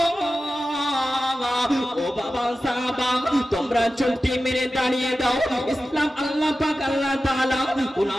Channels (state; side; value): normal; both; correlation 0.94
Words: ও বাবা সাহাবা, তোমরা চুক্তি মেরে দাঁড়িয়ে দাও। ইসলাম আল্লাহ পাক আল্লাহ তাআলা